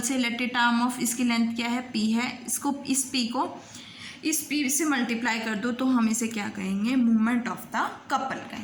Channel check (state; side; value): identical; both; correlation 1.00